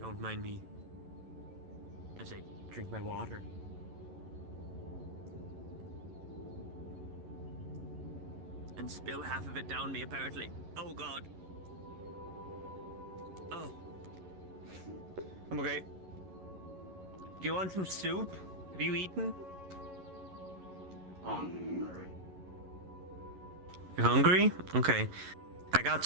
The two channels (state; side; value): late; left; 11 ms